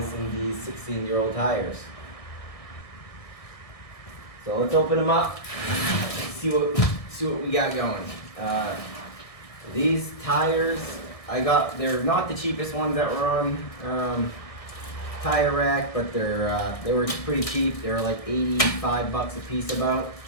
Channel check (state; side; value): late; right; 1.6 ms